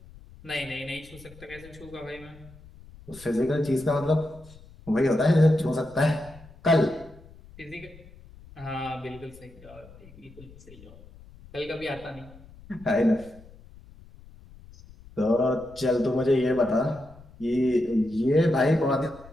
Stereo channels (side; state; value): left; noise; rumble, 21 dB below the sound